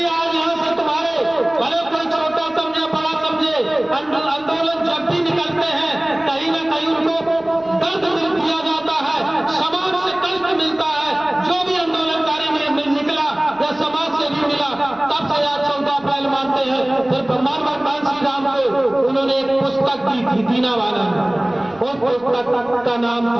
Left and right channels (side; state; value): right; noise; rumble, 29 dB below the sound